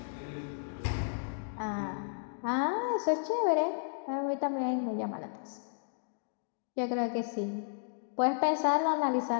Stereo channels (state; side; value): silent; right; digital silence